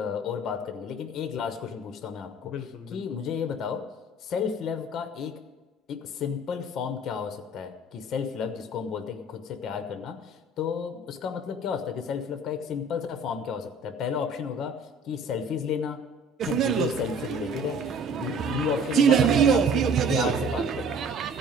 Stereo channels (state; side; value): normal; both; correlation 0.49